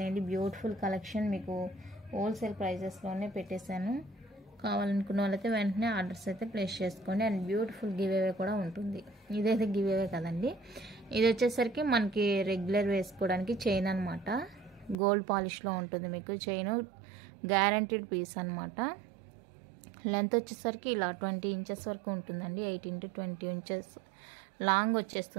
బ్యూటిఫుల్ కలెక్షన్ మీకు హోల్సేల్ ప్రైజెస్లోనే పెట్టేశాను. కావాలనుకున్న వాళ్ళైతే వెంటనే ఆర్డర్స్ అయితే ప్లేస్ చేసుకోండి. అండ్ బ్యూటిఫుల్ గివ్ అవే కూడా ఉంటుంది. ఇదైతే గివ్ అవే కదండి, ఇది వచ్చేసరికి మనకి రెగ్యులర్ వేసుకోవడానికి చైన్ అనమాట. గోల్డ్ పాలిష్లో ఉంటుంది మీకు చైన్, గ్యారంటీడ్ పీస్ అనమాట. లెంత్ వచ్చేసరికి ఇలా 20 ఇంచెస్ వరకు ఉంటుందండి. 18 to 20 ఇంచెస్ లాంగ్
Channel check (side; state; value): left; drops out; at 15.0 s